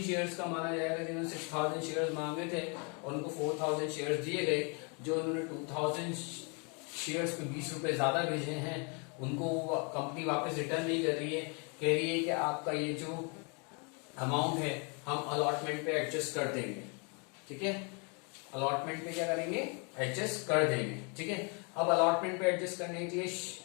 शेयर्स का माना जाएगा जिन्होंने 6,000 शेयर्स मांगे थे और उनको 4,000 शेयर्स दिए गए. जो उन्होंने 2,000 शेयर्स को 20 रुपए ज्यादा भेजे हैं उनको कंपनी वापस रिटर्न नहीं कर रही है, कह रही है कि आपका ये जो अमाउंट है हम अलॉटमेंट पे एडजस्ट कर देंगे. ठीक है, अलॉटमेंट पे क्या करेंगे? एडजस्ट कर देंगे. ठीक है, अब अलॉटमेंट पे एडजस्ट करने के लिए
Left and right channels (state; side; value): quieter; right; 34.7 dB